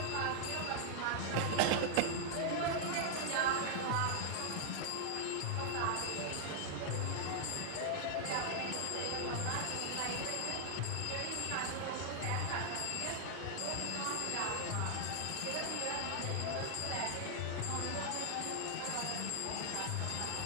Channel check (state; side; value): different; both; correlation 0.00